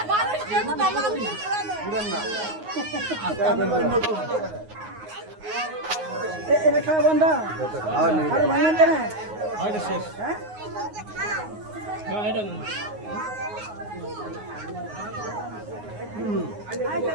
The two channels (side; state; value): left; late; 9.5 ms